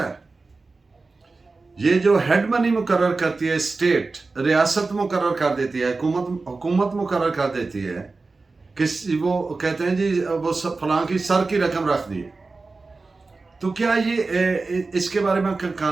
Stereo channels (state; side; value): quieter; left; 3.8 dB